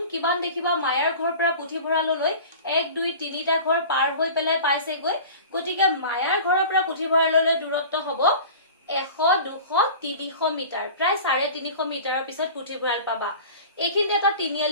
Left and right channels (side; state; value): both; inverted; correlation -0.39